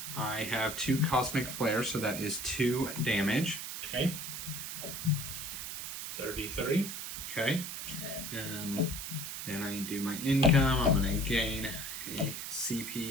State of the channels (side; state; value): right; noise; hiss, 6 dB below the sound